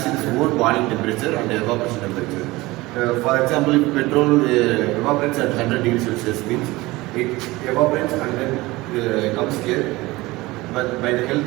its own boiling temperature and evaporation temperature. For example, if petrol evaporates at 100 degrees Celsius, means it evaporates and then comes here. But by the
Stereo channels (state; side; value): quieter; left; 20.5 dB